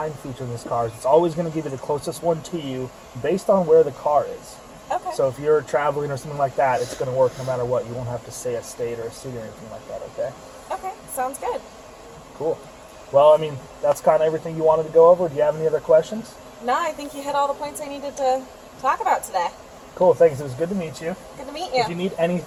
feature in this car is it's always going to give you the closest one to you based on where the car is. Okay. So if you're traveling or something like that, it's going to work no matter what. You won't have to say a state or a city or anything like that, okay? Okay. Sounds good. Cool. Well, I mean, that's kind of everything you wanted to go over. Do you have any other questions? No, I think you hit all the points I needed to talk about today. Cool, thanks. It was good to meet you. Good to meet If you you. need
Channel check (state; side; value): identical; both; correlation 1.00